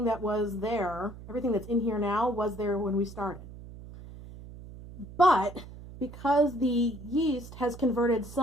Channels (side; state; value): right; noise; hum, 15 dB below the sound